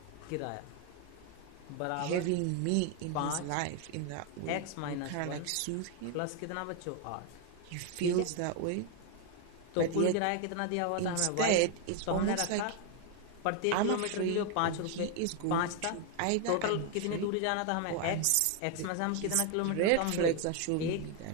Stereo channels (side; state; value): both; different; correlation 0.01